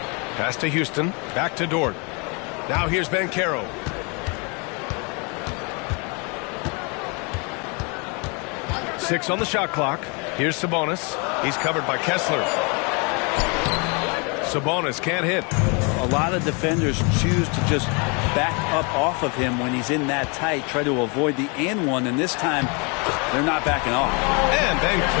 Pass to Houston. Back to Dort. Now here's Banchero. Six on the shot clock. Here's Sabonis. He's covered by Kessler. Sabonis can't hit. A lot of defenders choose to just back up off of him when he's in that tight, try to avoid the and one, and this time they're not backing off. And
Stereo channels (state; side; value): quieter; right; 32.3 dB